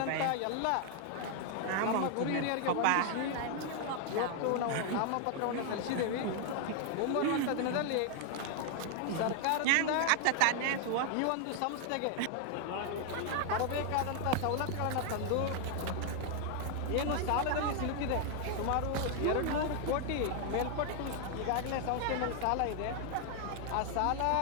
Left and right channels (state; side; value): different; both; correlation 0.00